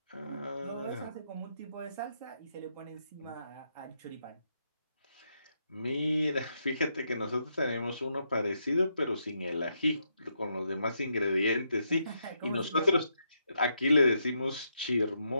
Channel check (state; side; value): inverted; both; correlation -0.80